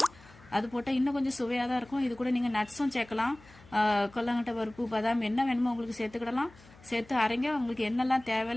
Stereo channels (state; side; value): noise; left; hum, 24 dB below the sound